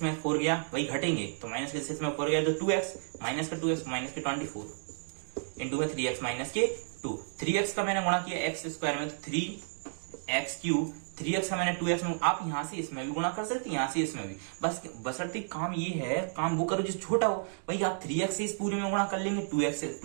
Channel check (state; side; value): silent; left; digital silence